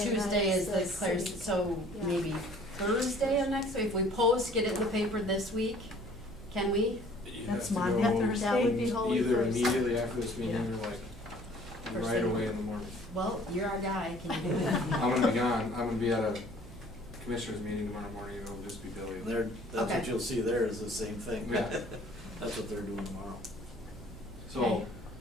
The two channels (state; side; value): noise; right; hum, 17 dB below the sound